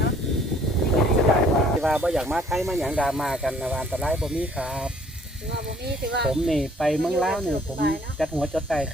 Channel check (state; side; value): normal; both; correlation 0.59